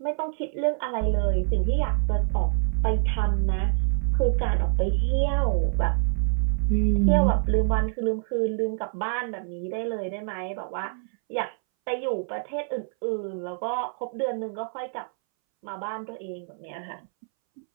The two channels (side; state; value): left; silent; 61 dB below the other